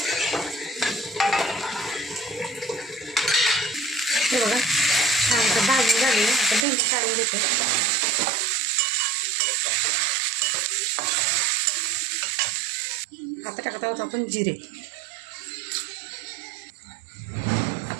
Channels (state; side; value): drops out; left; at 6.7 s